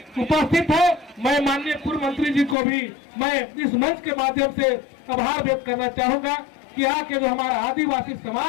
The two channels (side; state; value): right; drops out; at 2.6 s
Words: उपस्थित है। मैं माननीय पूर्व मंत्री जी को भी मैं इस मंच के माध्यम से आभार व्यक्त करना चाहूंगा कि यहाँ के जो हमारा आदिवासी